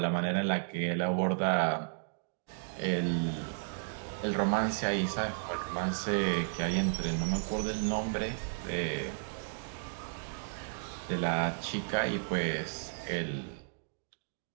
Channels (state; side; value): silent; left; digital silence